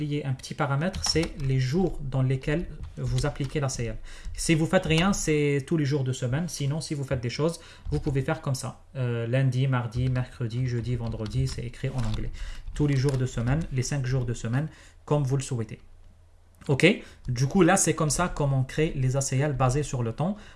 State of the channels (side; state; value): both; identical; correlation 1.00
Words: un petit paramètre, c'est les jours dans lesquels vous appliquez l'ACL. Si vous faites rien, c'est tous les jours de semaine. Sinon, si vous faites des choses, vous pouvez faire comme ça. Lundi, mardi, mercredi, jeudi, vendredi, c'est écrit en anglais. Tous les jours de semaine, les 5 jours de semaine, comme vous le souhaitez. Ok, du coup là c'est comme ça comment on crée les ACL basés sur le temps.